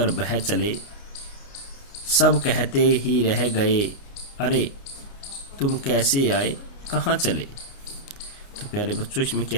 बह चले, सब कहते ही रह गए, अरे तुम कैसे आए कहाँ चले। तो प्यारे बच्चों, इसमें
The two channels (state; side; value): late; right; 29 ms